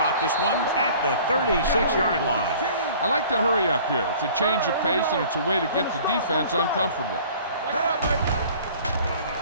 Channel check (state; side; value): inverted; both; correlation -0.49